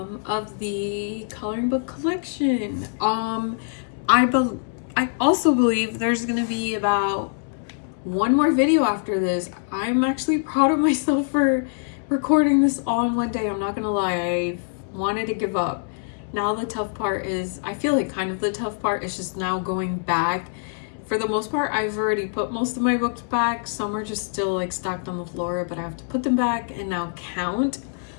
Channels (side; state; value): right; silent; digital silence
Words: the coloring book collection. I also believe there's gonna be about one more video after this. I'm actually proud of myself for recording this all in one day. I'm not gonna lie, I wanted to give up. Now the tough part is, I feel like kind of the tough part is just now going back. For the most part, I've already put most of my books back. Some are just still like stacked on the floor, but I have to put them back and now count